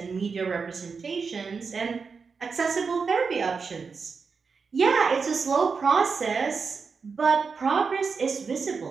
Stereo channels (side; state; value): left; quieter; 5.2 dB